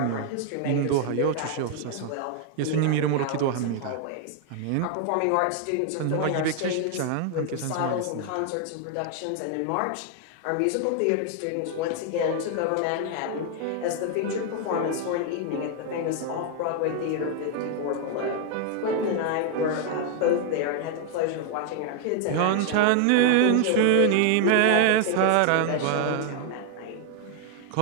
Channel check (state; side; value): different; both; correlation 0.00